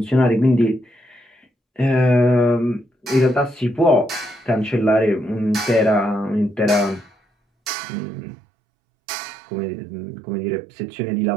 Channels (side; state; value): left; drops out; at 7.7 s